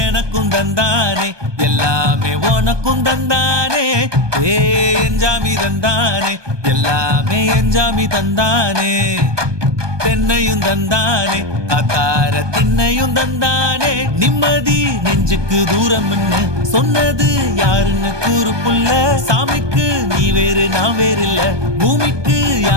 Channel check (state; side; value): late; left; 1.2 ms